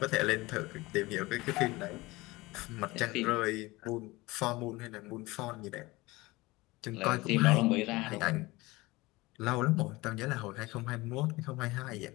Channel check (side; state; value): right; quieter; 21.3 dB